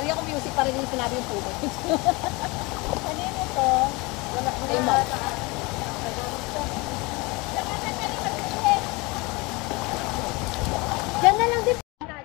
ko music para din sinabi yung puto. Kanino to? Wala ko Ay, Mom. Diyan na lang din.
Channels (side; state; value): right; quieter; 25.4 dB